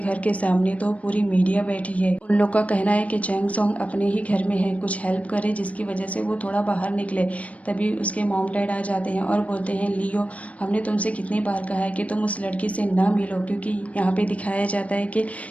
के सामने तो पूरी मीडिया बैठी है। उन लोग का कहना है कि चैंग सोंग अपने ही घर में है, कुछ हेल्प करे जिसकी वजह से वो थोड़ा बाहर निकले। तभी उसके मॉम डैड आ जाते हैं और बोलते हैं लियो हमने तुमसे कितनी बार कहा है कि तुम उस लड़की से ना मिलो, क्योंकि यहाँ पे दिखाया जाता है कि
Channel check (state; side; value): late; right; 0.066 ms